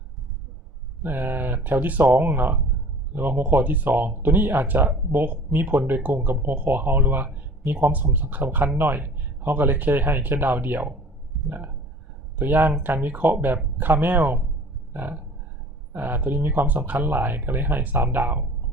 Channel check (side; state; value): both; normal; correlation 0.45